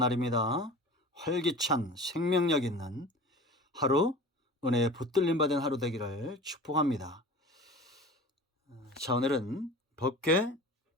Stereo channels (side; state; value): both; normal; correlation 0.38